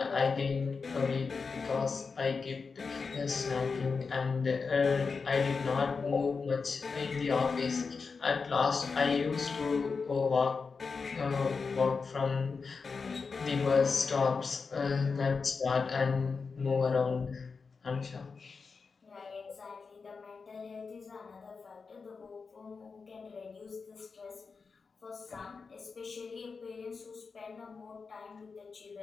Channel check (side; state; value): right; quieter; 4.9 dB